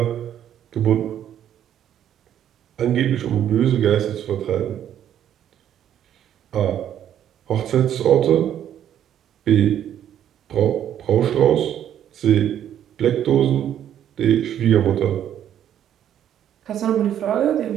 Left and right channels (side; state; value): left; quieter; 10.4 dB